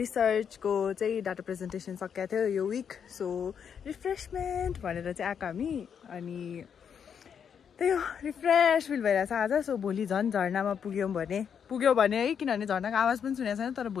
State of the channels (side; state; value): right; quieter; 7.6 dB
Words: चाहिँ डाटा प्रेजेन्टेसन सकिएको थियो यो विक. सो रिफ्रेसमेन्ट भनेर चाहिँ आएको हामी. अनि त्यही हो रिफ्रेस फिल भइरहेछ आज. सो भोलि झन् झर्नामा पुग्यो भने है. किनभने झर्नाको आवाज पनि सुनेको छैन. तर